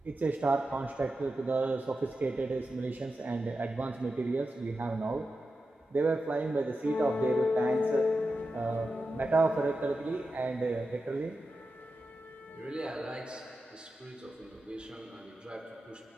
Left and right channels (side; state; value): both; normal; correlation 0.90